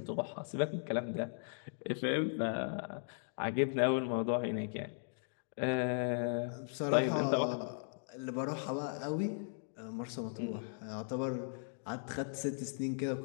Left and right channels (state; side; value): silent; right; digital silence